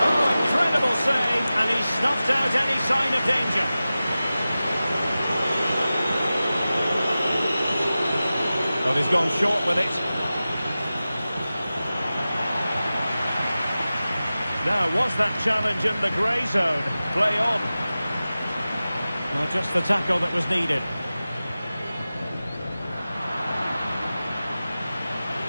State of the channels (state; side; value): inverted; both; correlation -0.95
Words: Oh, incredible save. And he snuffed out any sign of danger. Well, he's gone short with it. Now, was that challenge in the grey zone? Play on. Well, just the tackle that was needed.